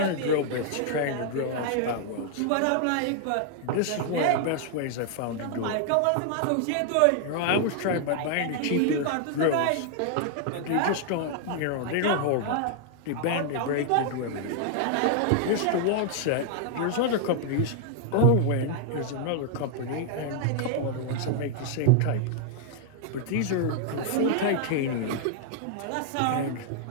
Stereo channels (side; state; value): both; different; correlation 0.00